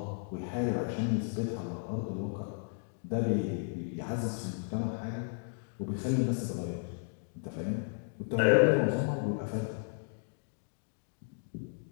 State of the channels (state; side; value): silent; right; 55 dB below the other